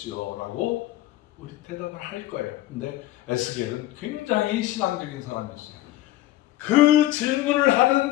라고 우리 대답을 할 거예요. 근데 에스겔은 굉장히 신앙적인 사람이었어요. 그 질문을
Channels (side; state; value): right; quieter; 16.1 dB